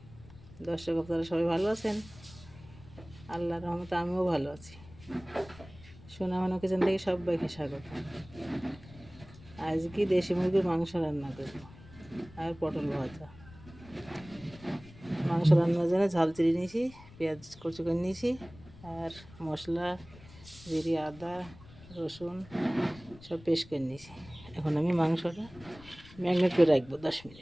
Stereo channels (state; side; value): noise; left; rumble, 20 dB below the sound